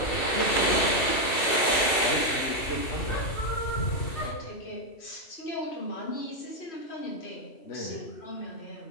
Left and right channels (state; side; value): late; right; 2.7 ms